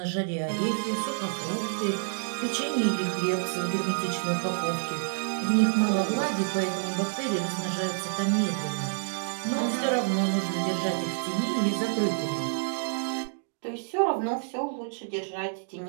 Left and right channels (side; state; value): left; silent; digital silence